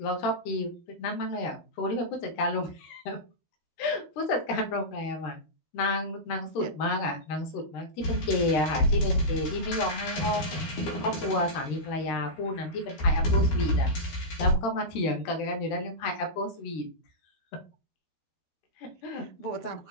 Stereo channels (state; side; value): late; right; 13 ms